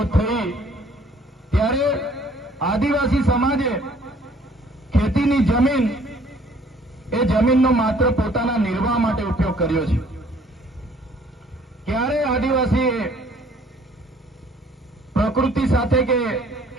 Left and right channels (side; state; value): both; normal; correlation 0.58